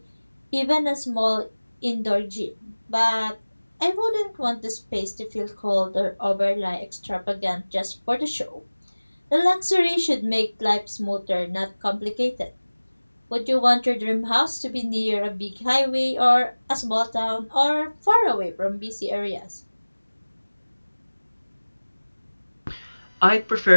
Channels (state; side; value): inverted; both; correlation -1.00